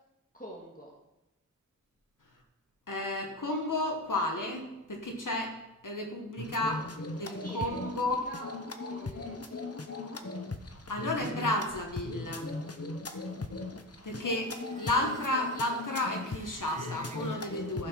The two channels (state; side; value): normal; both; correlation 0.22